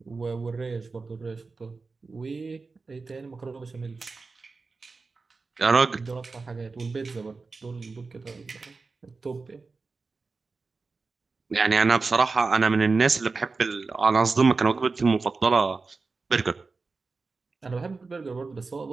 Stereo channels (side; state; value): left; quieter; 4.1 dB